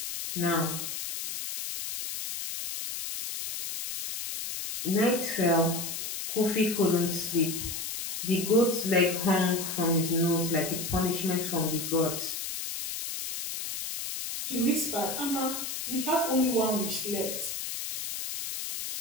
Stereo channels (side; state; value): left; noise; hiss, 5 dB below the sound